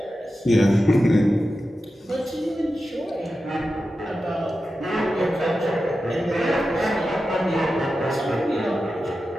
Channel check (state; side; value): normal; both; correlation 0.92